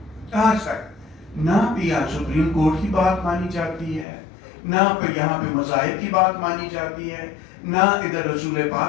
आज तक ना भी यहाँ सुप्रीम कोर्ट की बात मानी जाती है, ना यहाँ पे मज़ाहिब की बात मानी जाती है, ना इधर रसूल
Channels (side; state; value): right; drops out; at 4.0 s